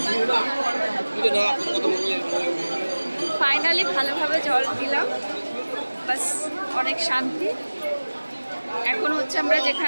ফাইনালি ভালোভাবে জল দিলাম, বাস অনেক শান্তি। এখন হচ্ছে আমরা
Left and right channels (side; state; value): both; inverted; correlation -1.00